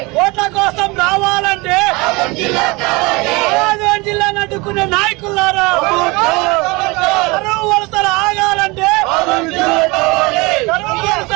ఓట్ల కోసం రావాలంటే ఆదోని జిల్లాను అడ్డుకునే నాయకులారా, కరువు వలసలు ఆగాలంటే, కరువు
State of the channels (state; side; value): quieter; left; 25.1 dB